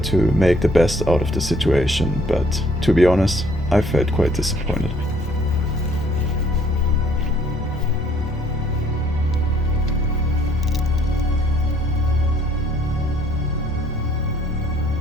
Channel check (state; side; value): normal; both; correlation 0.62